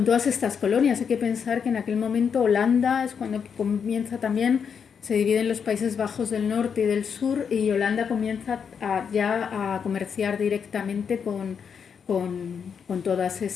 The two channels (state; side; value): quieter; right; 6.8 dB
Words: estas colonias. Hay que pensar que en aquel momento Holanda es cuando comienza también, se dividen los Países Bajos del norte y del sur, y Holanda comienza ya a comerciar directamente con todas